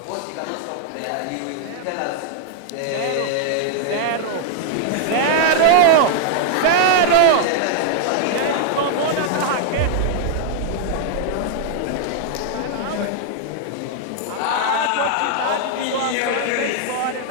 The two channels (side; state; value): both; different; correlation -0.01